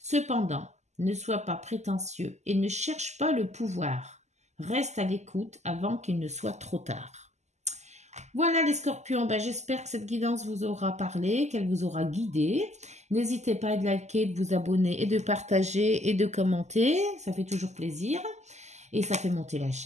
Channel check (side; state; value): left; late; 0.33 ms